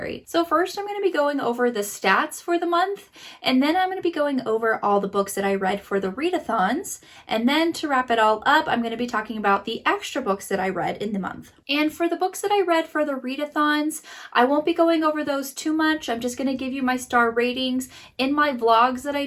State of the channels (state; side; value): identical; both; correlation 1.00